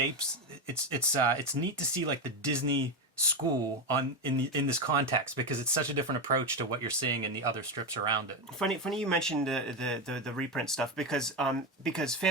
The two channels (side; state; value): both; normal; correlation 0.13